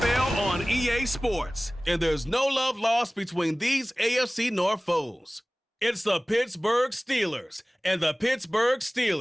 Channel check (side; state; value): both; normal; correlation 0.98